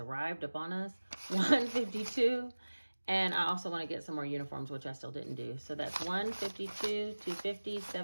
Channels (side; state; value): both; inverted; correlation -1.00